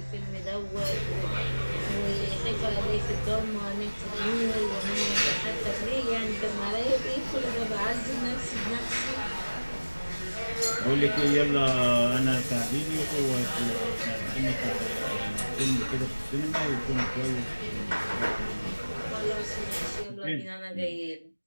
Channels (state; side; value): inverted; both; correlation -1.00